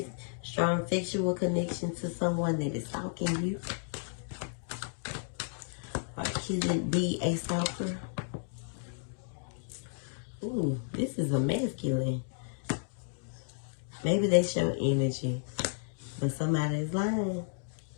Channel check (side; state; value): right; silent; digital silence